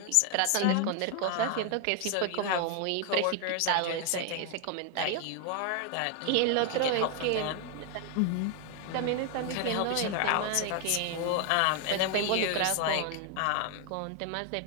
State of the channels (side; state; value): both; different; correlation 0.00